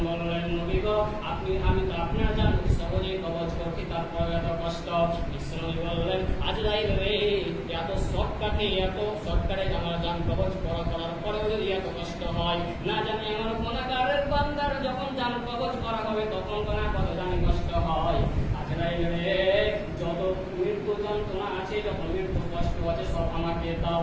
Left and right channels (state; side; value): identical; both; correlation 1.00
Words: বললেন, নবী গো, আমি তো আপনার জান সহজেই কবজ করছি, তারপর এত কষ্ট। বিশ্বনবী বললেন, আজরাইল রে, এত শর্টকাটে আমার জান কবজ করার পরেও যদি এত কষ্ট হয়, না জানি আমার গুনাহগারের বান্দার যখন জান কবজ করা হবে তখন কত জানি কষ্ট হয়। আজরাইল রে, যত মৃত্যু যন্ত্রণা আছে, যত মৃত্যু কষ্ট আছে সব আমাকে দাও,